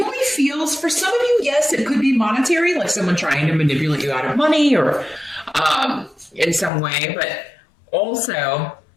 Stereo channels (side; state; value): right; drops out; at 6.7 s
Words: feels, for some of you, yes, it could be monetary, like someone trying to manipulate you out of money or in some way, but also,